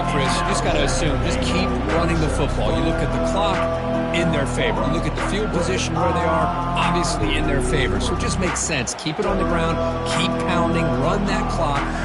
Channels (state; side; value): identical; both; correlation 1.00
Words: Chris. You just got to assume, just keep running the football. You look at the clock, in their favor. You look at the field position where they are, obviously in their favor. So it just makes sense. Keep it on the ground, keep pounding, run that clock,